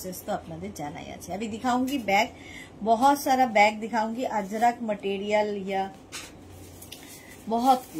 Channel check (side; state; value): both; identical; correlation 1.00